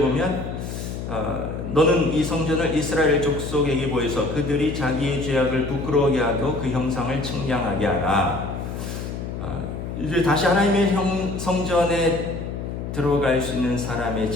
너는 이 성전을 이스라엘 족속에게 보여서 그들이 자기의 죄악을 부끄러워하게 하고 그 형상을 측량하게 하라. 이제 다시 하나님의 성전에 들어갈 수 있는 사람의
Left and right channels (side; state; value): left; noise; hum, 6 dB below the sound